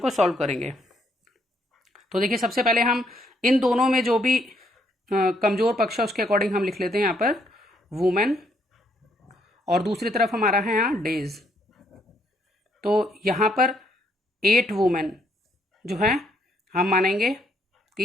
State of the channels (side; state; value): both; normal; correlation 0.71